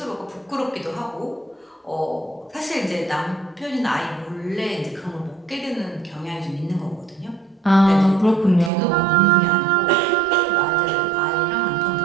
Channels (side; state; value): left; drops out; at 8.7 s